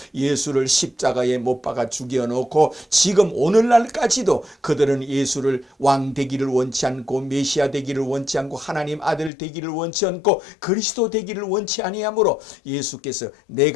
예수를 십자가에 못 박아 죽여놓고 지금 오늘날까지도 그들은 예수를 왕 되기를 원치 않고 메시아 되기를 원치 않고 하나님 아들 되기를 원치 않고 그리스도 되기를 원치 아니하므로 예수께서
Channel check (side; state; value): right; drops out; at 9.3 s